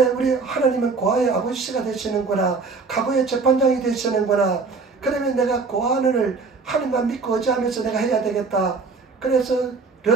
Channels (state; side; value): quieter; left; 4.4 dB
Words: 우리 하나님은 고아의 아버지가 되시는구나, 가부의 재판장이 되시는구나. 그러면 내가 고아원을 하나님만 믿고 의지하면서 내가 해야 되겠다. 그래서